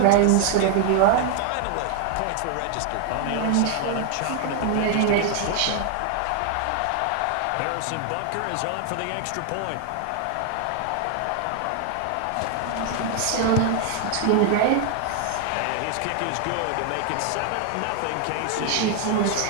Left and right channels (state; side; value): different; both; correlation 0.00